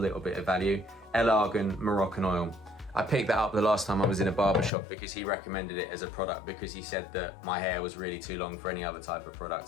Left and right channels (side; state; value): right; drops out; at 4.7 s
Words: bit of value, El Argan Moroccan Oil. I picked that up the last time I was in a barber shop because he recommended it as a product because he said that my hair was really too long for any other type of